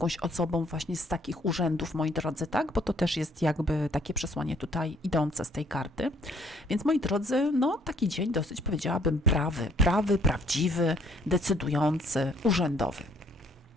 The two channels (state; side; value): normal; both; correlation 0.63